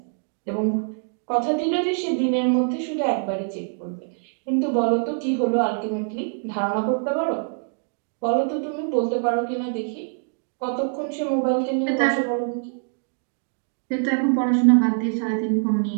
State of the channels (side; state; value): left; silent; 62 dB below the other